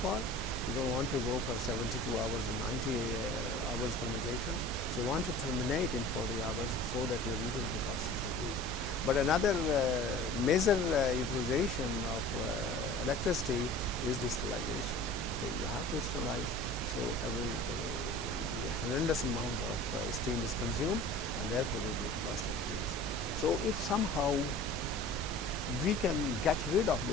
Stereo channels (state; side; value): normal; both; correlation 0.41